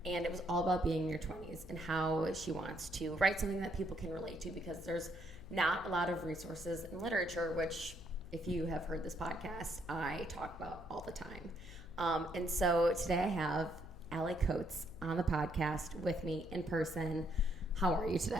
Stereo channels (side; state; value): left; noise; hum, 16 dB below the sound